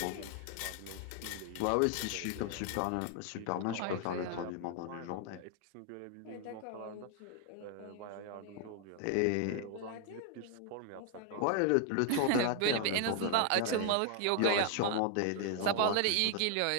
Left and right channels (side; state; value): both; different; correlation 0.00